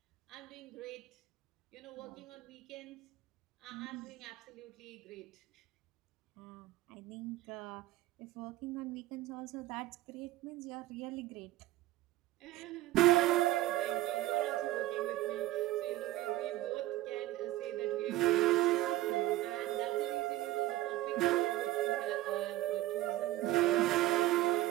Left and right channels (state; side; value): quieter; left; 16.2 dB